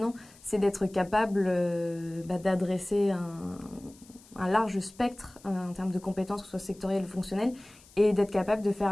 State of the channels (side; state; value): left; noise; hiss, 25 dB below the sound